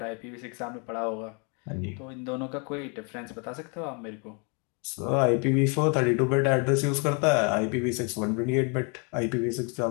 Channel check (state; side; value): quieter; right; 35.3 dB